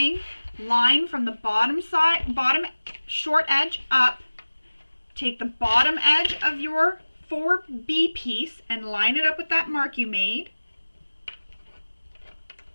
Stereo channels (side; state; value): both; inverted; correlation -1.00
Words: line from the bottom side, bottom short edge up. Take the bottom edge of your 4B piece and line it up with that mark you made.